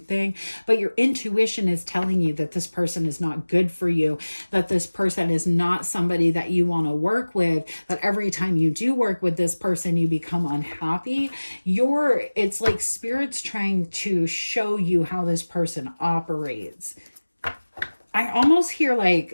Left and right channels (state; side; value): inverted; both; correlation -1.00